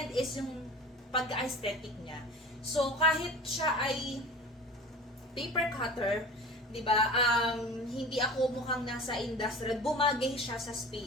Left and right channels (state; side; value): normal; both; correlation 0.37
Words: is yung pag-aesthetic niya. So, kahit siya ay paper cutter, di ba, hindi ako mukhang nasa industrial, bumagay siya sa